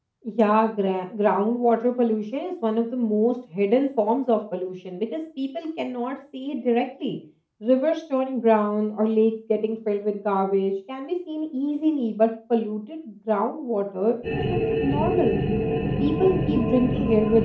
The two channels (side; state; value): both; identical; correlation 1.00